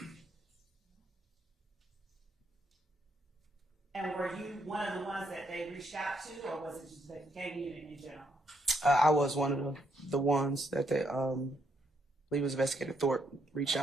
And were you one of the ones that they reached out to, or was it just the gang unit in general? I was one of the ones that they, I believe it was Investigator Thorpe, reached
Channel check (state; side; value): normal; both; correlation 0.75